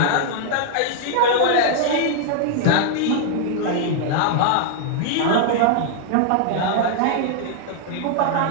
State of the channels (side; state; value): both; different; correlation -0.01